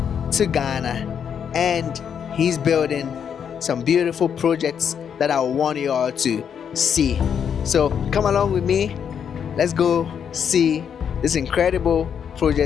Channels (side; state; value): right; quieter; 7.8 dB